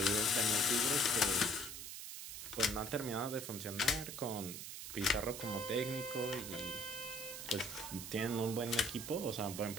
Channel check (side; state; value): right; noise; hiss, 8 dB below the sound